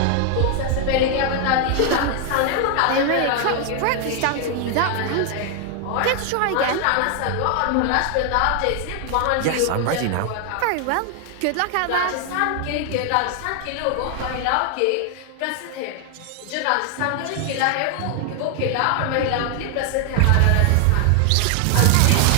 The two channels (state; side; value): different; both; correlation 0.00